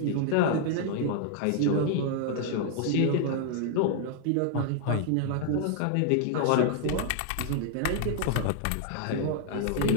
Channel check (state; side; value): different; both; correlation 0.00